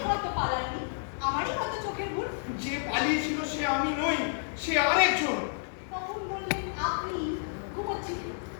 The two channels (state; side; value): silent; right; 58 dB below the other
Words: হয়তো পালাননি, আমারই হয়তো চোখের ভুল। যে পালিয়েছিল সে আমি নই, সে আরেকজন। কখন বললেন আপনি ঘুমোচ্ছিলেন?